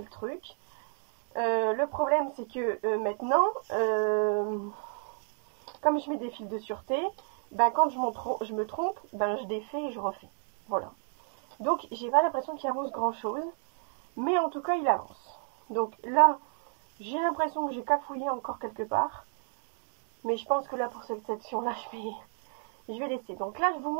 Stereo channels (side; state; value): left; silent; 57 dB below the other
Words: le truc. Le problème, c'est que maintenant, comme je mets des fils de sûreté, ben, quand je me trompe, ben, je défais et je refais. Voilà. Donc, j'ai pas l'impression qu'il avance grand-chose. Mais en tout cas, il avance. Donc là, j'ai l'impression que j'ai cafouillé encore quelque part. Mais je pense que là, pour cette section-là, je vais laisser. Donc là, je vous